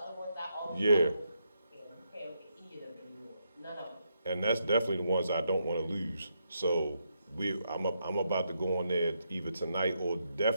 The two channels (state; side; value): inverted; both; correlation -0.80